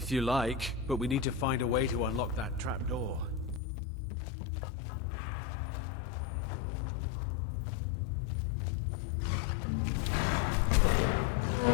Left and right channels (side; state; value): right; drops out; at 3.6 s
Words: you like, but we need to find a way to unlock that trapdoor.